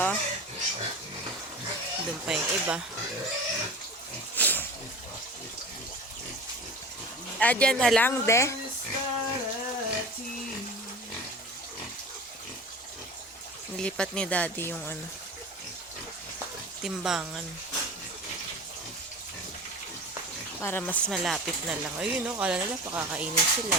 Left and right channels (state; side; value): normal; both; correlation 0.35